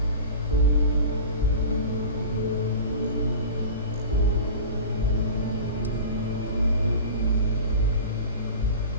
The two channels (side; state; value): both; inverted; correlation -0.35